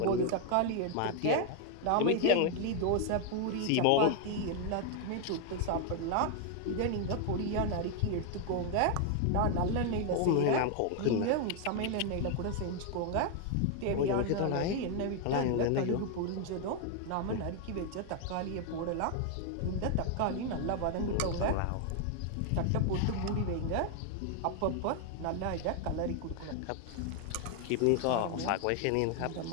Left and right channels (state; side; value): different; both; correlation 0.00